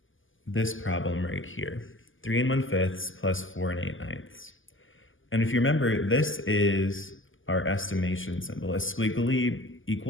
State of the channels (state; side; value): late; right; 0.58 ms